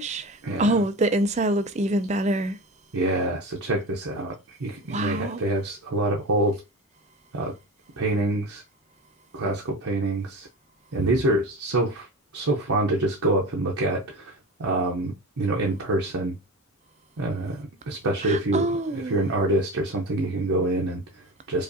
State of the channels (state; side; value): normal; both; correlation 0.29